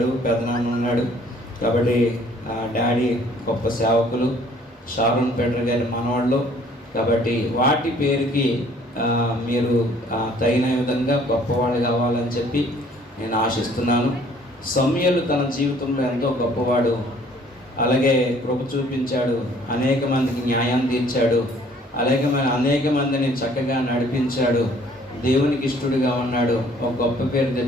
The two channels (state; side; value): normal; both; correlation 0.58